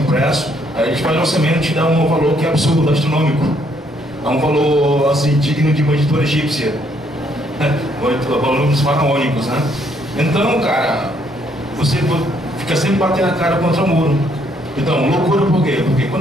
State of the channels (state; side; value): normal; both; correlation 0.69